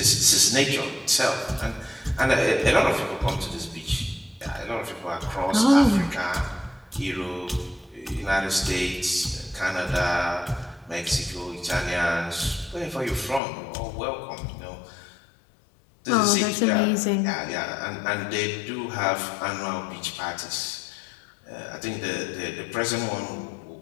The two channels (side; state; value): right; drops out; at 13.4 s